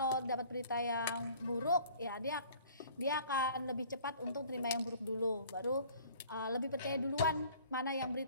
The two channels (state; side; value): inverted; both; correlation -0.51